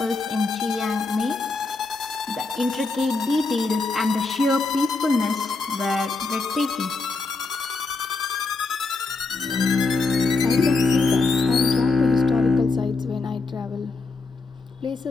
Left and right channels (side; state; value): right; quieter; 3.8 dB